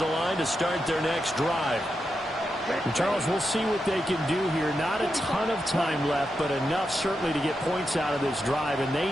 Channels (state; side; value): normal; both; correlation 0.87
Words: line to start their next drive. And Charles, we'll see what they can do here. Not a ton of time left, but enough certainly to get points out of this drive, and they